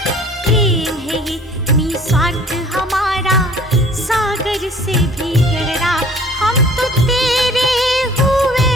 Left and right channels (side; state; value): both; normal; correlation 0.51